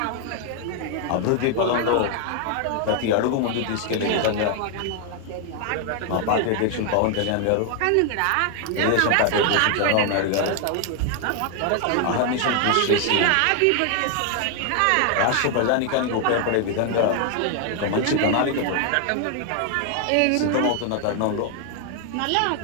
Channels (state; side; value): different; both; correlation 0.00